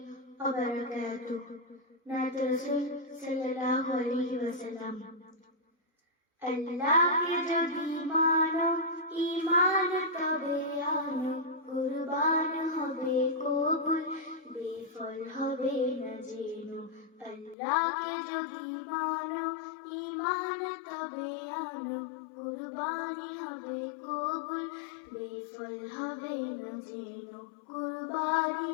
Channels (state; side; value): drops out; right; at 17.6 s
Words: ওয়া বারাকাতুহু। নাত রাসূল সাল্লাল্লাহু আলাইহি ওয়াসাল্লাম। আল্লাহকে যদি মানো ঈমান তবে আনো, কুরবান হবে কবুল, বেফল হবে না জেনো। আল্লাহকে যদি মানো ঈমান তবে আনো, কুরবানি হবে কবুল, বেফল হবে না জেনো। কুরবানি